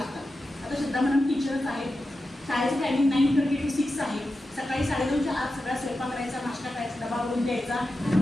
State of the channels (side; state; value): both; normal; correlation 0.91